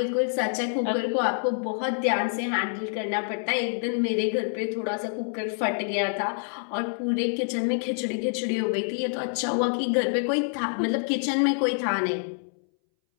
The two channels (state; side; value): silent; right; 60 dB below the other